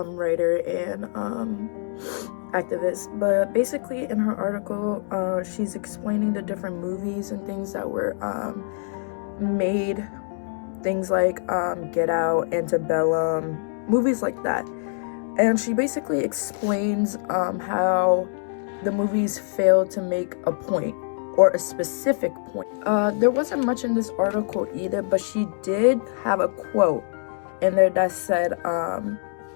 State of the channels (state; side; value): silent; right; 62 dB below the other